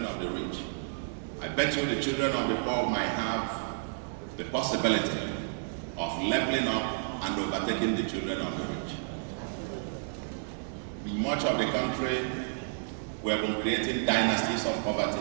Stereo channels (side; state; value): left; silent; 57 dB below the other